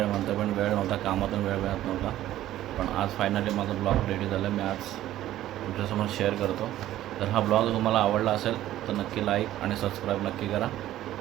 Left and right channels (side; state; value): left; quieter; 13.7 dB